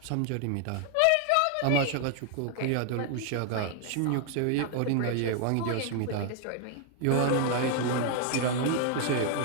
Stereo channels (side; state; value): both; different; correlation 0.00